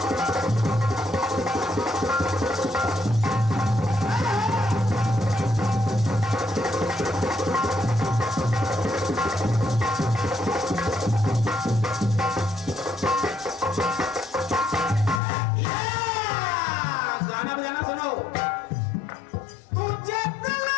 गाना बजाना सुनो। तुझे दिल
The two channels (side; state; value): right; drops out; at 15.2 s